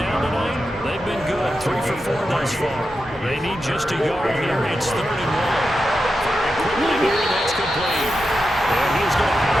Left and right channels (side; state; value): both; normal; correlation 0.89